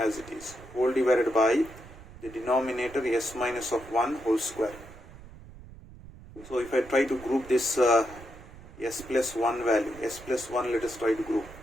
it is, whole divided by the denominator s minus of 1 whole square. So if I try to group this s plus 1 value, s plus 1 let us try to group.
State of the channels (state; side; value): noise; right; rumble, 18 dB below the sound